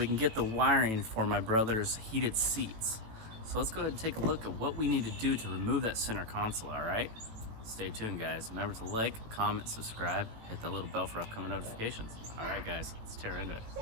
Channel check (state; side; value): late; left; 18 ms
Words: can get the wiring for my brother's heated seats. So let's go ahead and take a look at what we need to do to remove that center console, alright? Stay tuned guys. Remember to like, comment, subscribe, hit that little bell for upcoming notifications. Alright guys, let's tear into it.